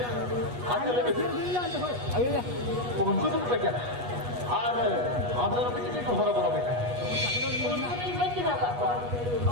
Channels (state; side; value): late; left; 8.3 ms